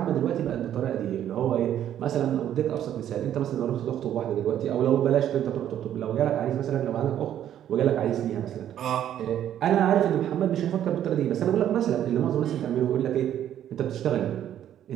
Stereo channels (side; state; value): left; quieter; 10.8 dB